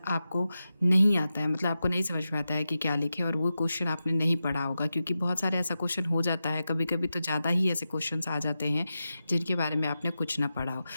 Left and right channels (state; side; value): inverted; both; correlation -0.91